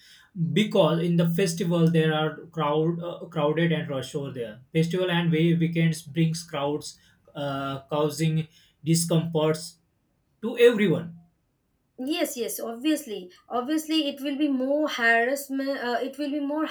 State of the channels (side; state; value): both; identical; correlation 1.00